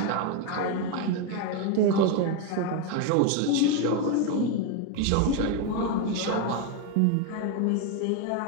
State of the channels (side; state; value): both; different; correlation 0.02